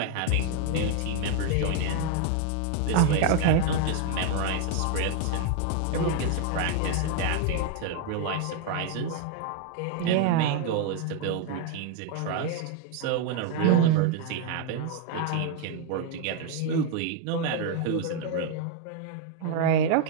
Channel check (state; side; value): different; both; correlation 0.00